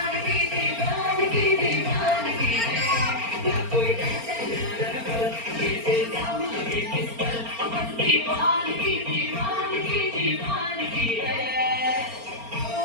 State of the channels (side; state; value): left; late; 4.3 ms